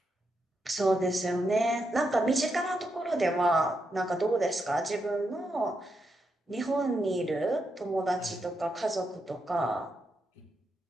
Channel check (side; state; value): both; normal; correlation 0.83